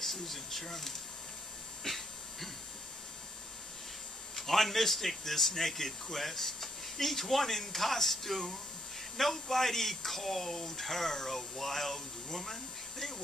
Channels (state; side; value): normal; both; correlation 0.72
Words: Sherman. On Mystic, this naked quest, each one in costume, nobody called her a wild woman. They